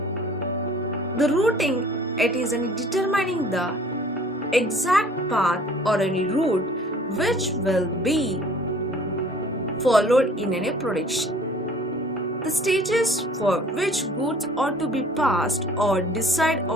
The routing, it is determining the exact path or route which will be followed in production. The stages for which goods are to be passed or decide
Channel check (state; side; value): normal; both; correlation 0.51